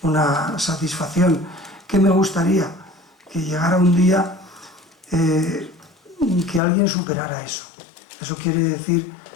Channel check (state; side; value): drops out; right; at 6.6 s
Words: satisfacción que me gustaría que llegara un día que alguien superara eso. Eso quiere decir